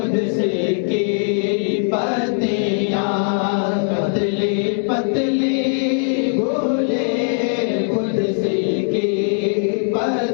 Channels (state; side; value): silent; right; digital silence